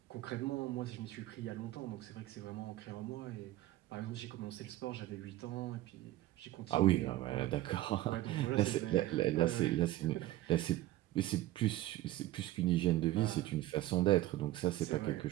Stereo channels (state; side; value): quieter; left; 15.5 dB